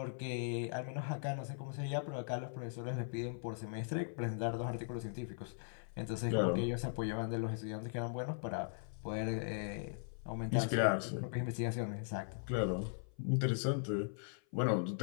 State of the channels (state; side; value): silent; right; 52 dB below the other